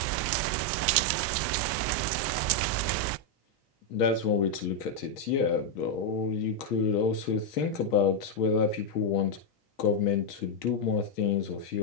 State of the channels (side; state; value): both; normal; correlation 0.00